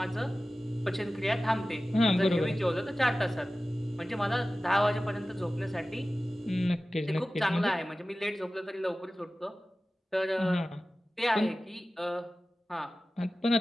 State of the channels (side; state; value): both; normal; correlation 0.96